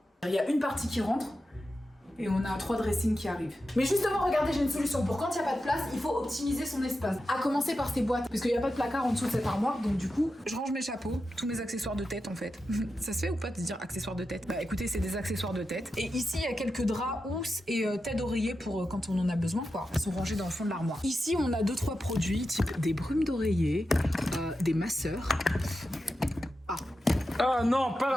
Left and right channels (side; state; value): both; normal; correlation 0.90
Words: Il y a une partie qui rentre, et on a 3 dressings qui arrivent. Mais justement, regardez, j'ai une solution. Pour quand il n'y a pas de place, il faut optimiser son espace. À commencer par ces boîtes, parce qu'il n'y a pas de placard en dessous de cette armoire, donc du coup, je range mes chapeaux, tous mes accessoires de tête en fait. Ça se fait ou pas de dire accessoires de tête? Bah écoutez, c'est des accessoires de tête. Et ici, il y a quelques draps, housses et têtes d'oreiller pour quand on en a besoin, quoi. Ils sont rangés dans le fond de l'armoire. Ici, on a 2-3 produits, type des brumes d'oreiller, des masseurs. Ah non, pas